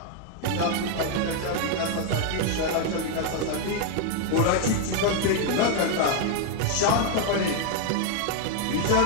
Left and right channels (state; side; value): different; both; correlation 0.00